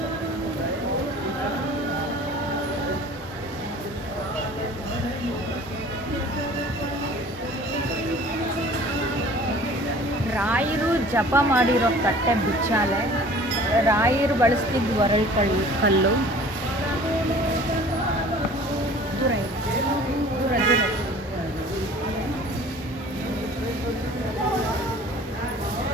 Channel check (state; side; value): normal; both; correlation 0.47